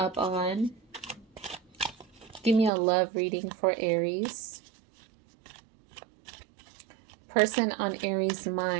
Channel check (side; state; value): left; drops out; at 2.7 s